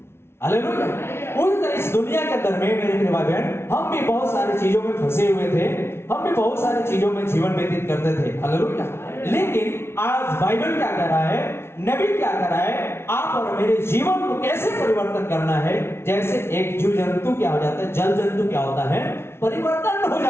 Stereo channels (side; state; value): right; late; 0.12 ms